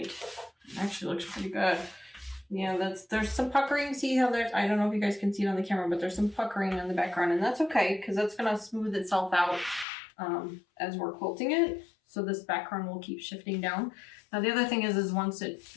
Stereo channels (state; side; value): drops out; right; at 9.9 s